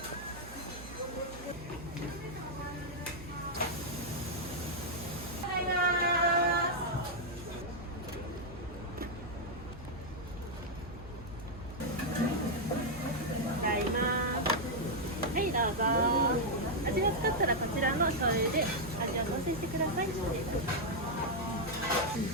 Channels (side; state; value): right; noise; hum, 14 dB below the sound